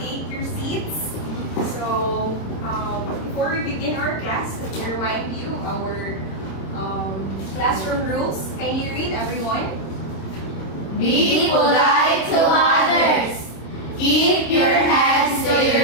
your seats. So, before we begin our class, let me remind you our classroom rules. Can you read, everyone? Be polite to others. Keep your hands to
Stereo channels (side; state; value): right; late; 26 ms